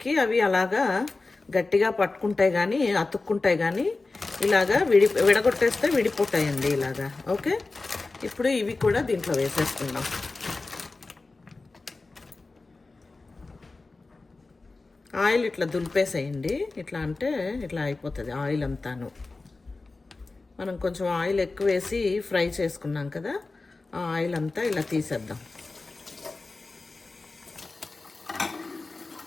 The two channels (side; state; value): right; quieter; 3.6 dB